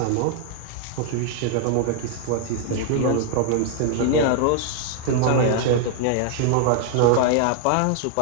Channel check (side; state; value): both; different; correlation 0.00